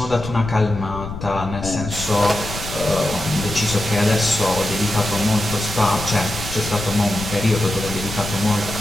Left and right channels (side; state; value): left; noise; rumble, 9 dB below the sound